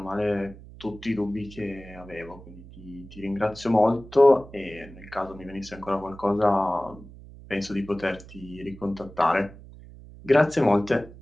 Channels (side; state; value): right; noise; hum, 18 dB below the sound